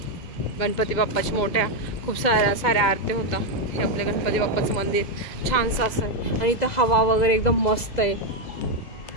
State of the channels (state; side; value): late; right; 2.0 ms